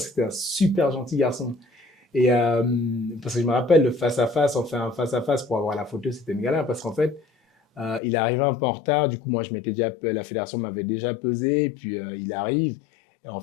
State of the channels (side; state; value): right; drops out; at 8.0 s